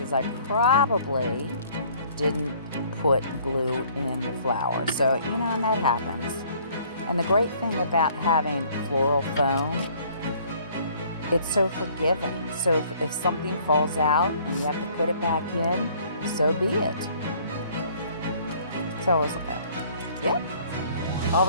I probably didn't put glue in the flower. So, you know, and that happens. And the great thing about having floral foam, it's so forgiving. So if something falls out and you have to put it back in, so be it. So I was like, yep. All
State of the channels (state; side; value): inverted; both; correlation -0.58